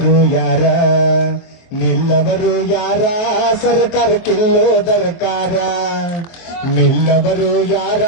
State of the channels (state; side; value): late; right; 23 ms